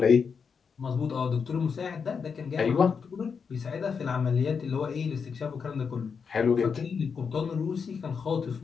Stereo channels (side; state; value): right; quieter; 6.0 dB